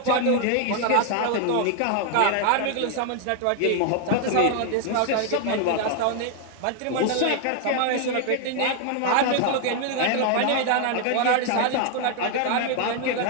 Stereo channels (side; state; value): both; different; correlation 0.00